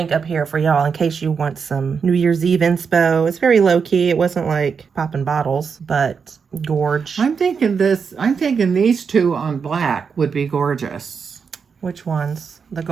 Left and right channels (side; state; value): left; quieter; 6.0 dB